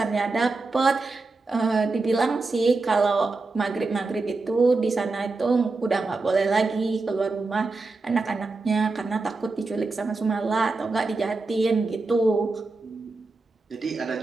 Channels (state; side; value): quieter; left; 3.6 dB